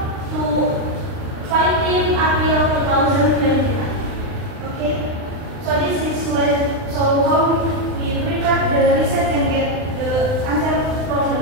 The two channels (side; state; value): left; late; 39 ms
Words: to 15 April 2021. Okay, so this is how we prepare the research and get the answer from the